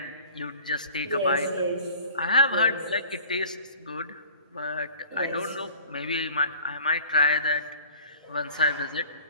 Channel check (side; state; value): both; inverted; correlation -0.46